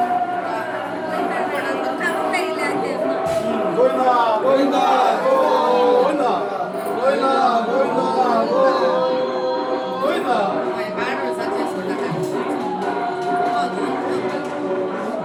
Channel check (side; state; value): both; identical; correlation 1.00